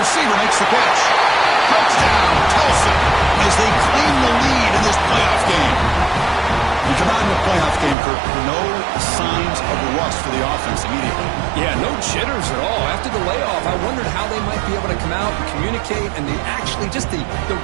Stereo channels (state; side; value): drops out; left; at 8.0 s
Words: makes the catch. Touchdown, Tulsa, as they claim the lead in this playoff game. We come out in the playoff game, Kirk, no signs of rust for the offense immediately. Yeah, no jitters at all. After the layoff, I wondered how they might be able to come out and communicate, and actually just the